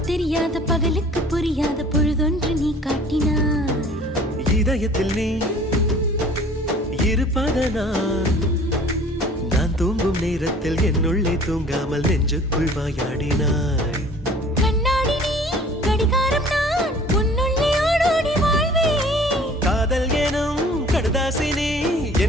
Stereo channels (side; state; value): both; normal; correlation 0.50